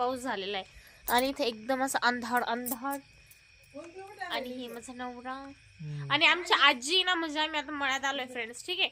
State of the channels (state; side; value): identical; both; correlation 1.00